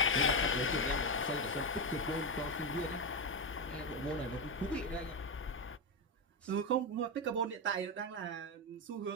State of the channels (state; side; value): normal; both; correlation 0.10